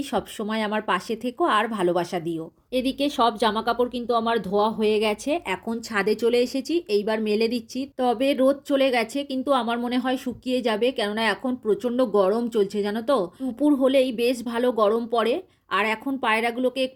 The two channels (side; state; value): both; identical; correlation 1.00